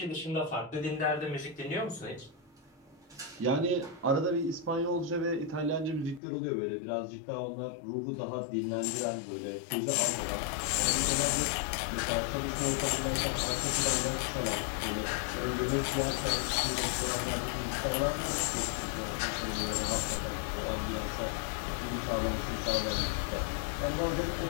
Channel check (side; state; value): right; drops out; at 6.2 s